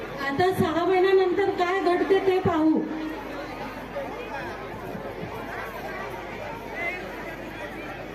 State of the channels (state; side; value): identical; both; correlation 1.00